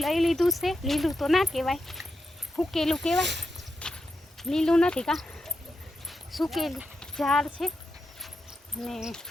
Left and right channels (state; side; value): normal; both; correlation 0.87